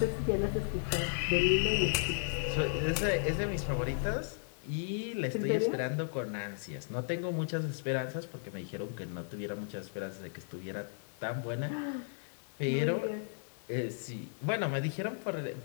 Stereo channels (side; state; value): right; silent; 55 dB below the other